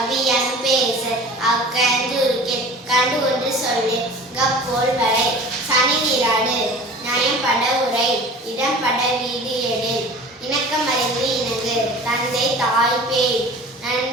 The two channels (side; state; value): both; normal; correlation 0.41